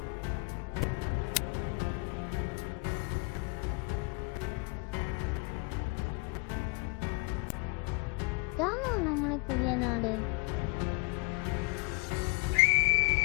ഇതാണോ നമ്മുടെ പുതിയ നാട്?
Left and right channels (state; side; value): quieter; right; 29.9 dB